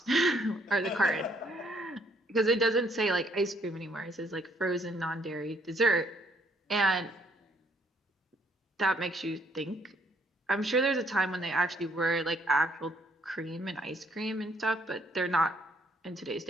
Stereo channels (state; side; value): normal; both; correlation 0.67